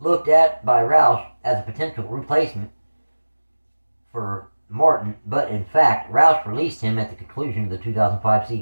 at by Roush as a potential replacement for Martin, but in fact, Roush released him at the conclusion of the 2005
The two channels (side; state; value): both; inverted; correlation -1.00